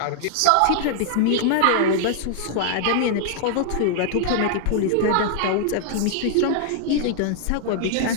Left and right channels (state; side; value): different; both; correlation 0.00